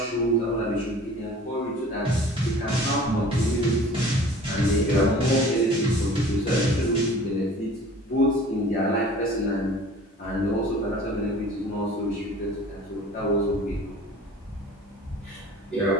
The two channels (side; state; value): both; normal; correlation 0.45